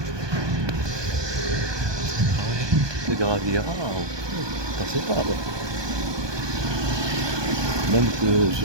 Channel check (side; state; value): left; late; 1.2 ms